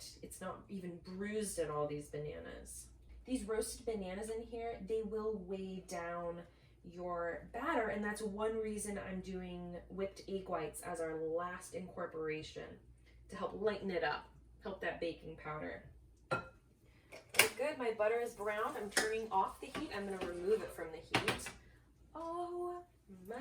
It's not even bruised in all these bananas. These roasted bananas in here, they will weigh down your batter, and that's one reason I'm doing whipped egg whites as our last incorporation, to help lighten it up, help that baking powder. Okay, good, my butter is brown. I'm turning off the heat. I'm gonna remove it from the heat. Oh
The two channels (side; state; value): both; identical; correlation 1.00